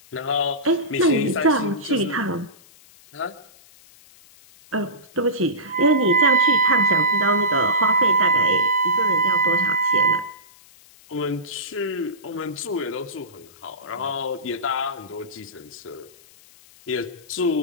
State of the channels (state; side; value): noise; left; hiss, 26 dB below the sound